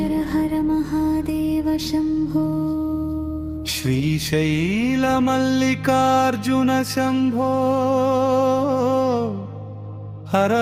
హర మహాదేవ శంభో. శ్రీశైల మల్లికార్జున శంభో. హర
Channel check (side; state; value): both; identical; correlation 1.00